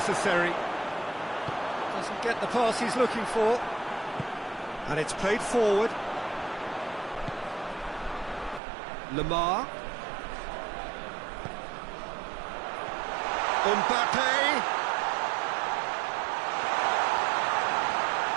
Doesn't get the pass he's looking for. And it's played forward. Lamar. Mbappe.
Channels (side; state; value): left; drops out; at 8.6 s